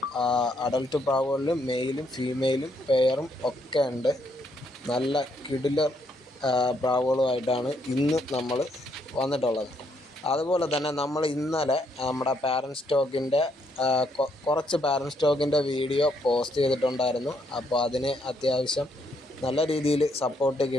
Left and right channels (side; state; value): both; normal; correlation 0.73